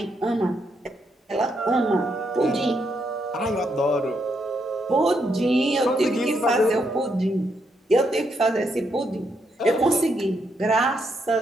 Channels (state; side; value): normal; both; correlation 0.78